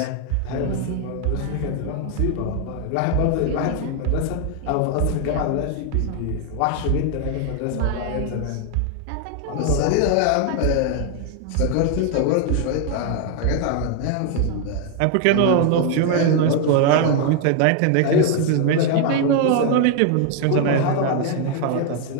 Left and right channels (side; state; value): both; different; correlation 0.00